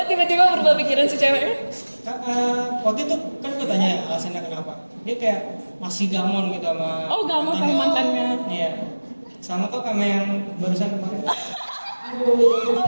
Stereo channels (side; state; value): both; inverted; correlation -1.00